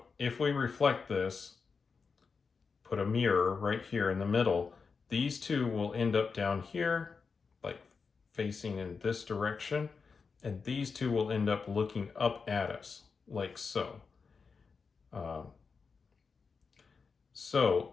if we reflect this, put a mirror right here in the middle, these two will end up down here, like facing in this direction, and these two will end up looking up at us, like so.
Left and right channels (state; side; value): quieter; right; 5.1 dB